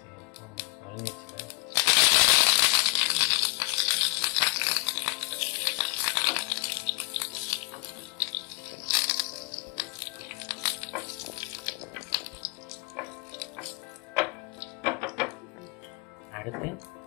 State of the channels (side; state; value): right; quieter; 28.8 dB